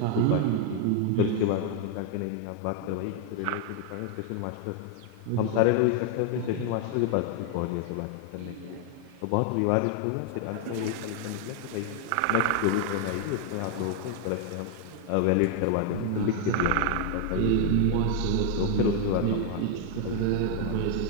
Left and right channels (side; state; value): both; different; correlation 0.00